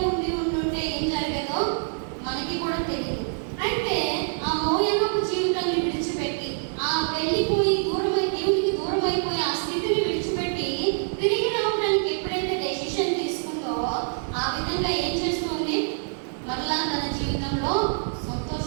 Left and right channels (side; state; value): left; silent; digital silence